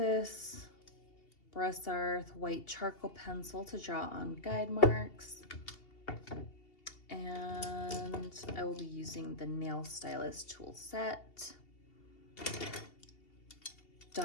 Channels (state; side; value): late; right; 2.8 ms